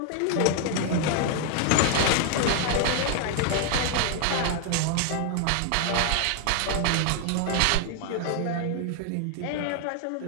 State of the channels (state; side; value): different; both; correlation 0.00